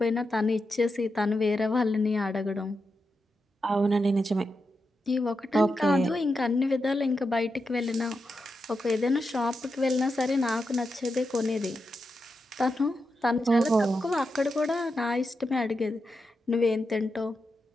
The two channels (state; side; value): normal; both; correlation 0.87